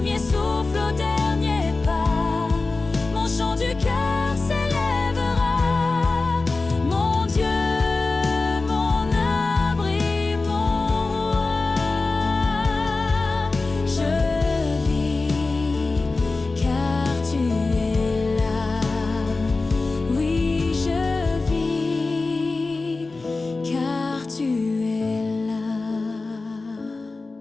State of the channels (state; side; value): quieter; right; 3.6 dB